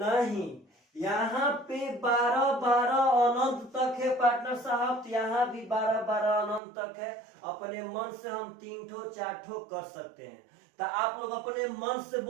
यहाँ पे 12 अनंत तक है पार्टनर साहब। तो यहाँ भी 12 अनंत तक है। अपने मन से हम 3 ठो 4 ठो कर सकते हैं। तो आप लोग अपने मन से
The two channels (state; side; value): drops out; left; at 6.6 s